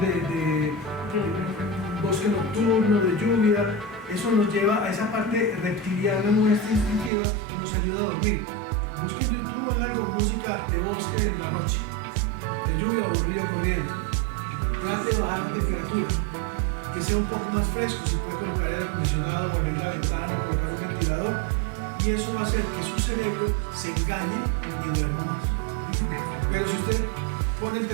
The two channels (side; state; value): left; drops out; at 7.1 s